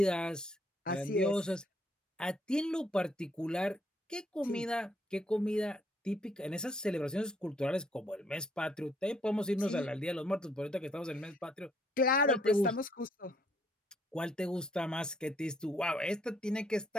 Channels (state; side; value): normal; both; correlation 0.69